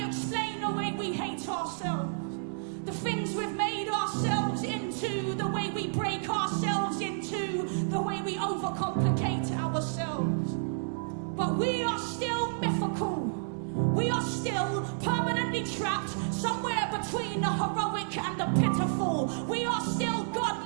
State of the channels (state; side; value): silent; left; digital silence